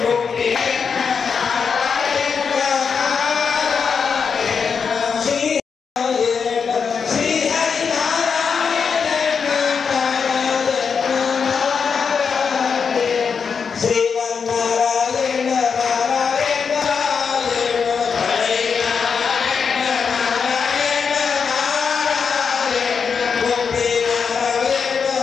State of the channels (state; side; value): quieter; right; 6.0 dB